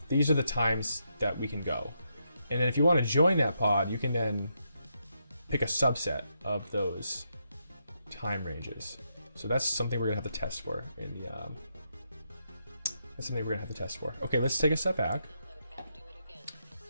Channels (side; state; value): both; inverted; correlation -0.81